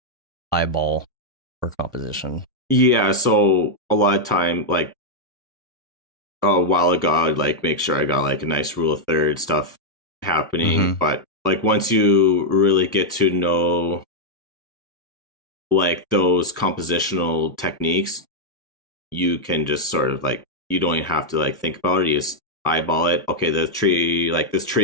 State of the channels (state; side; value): normal; both; correlation -0.02